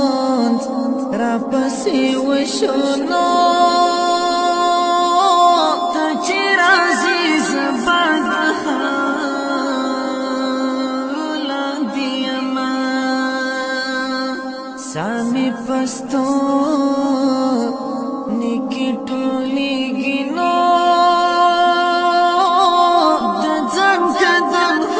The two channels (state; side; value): identical; both; correlation 1.00